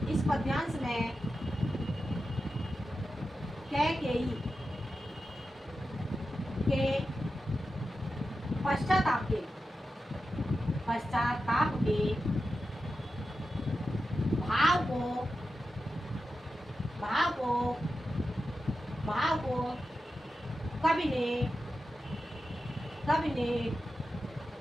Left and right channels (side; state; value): both; normal; correlation 0.91